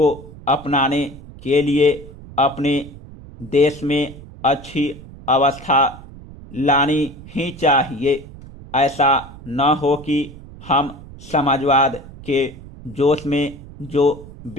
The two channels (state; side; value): noise; right; rumble, 17 dB below the sound